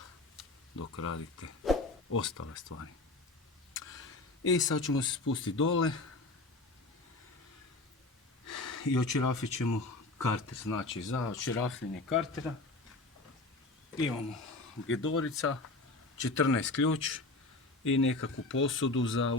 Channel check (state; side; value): quieter; right; 3.1 dB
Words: dok radite ostale stvari. I sad ćemo se spustiti dole i odšerafit ćemo karter. Znači, za odšerafljenje kartera imamo gedorica, 14 ključ i nekakvu posudu za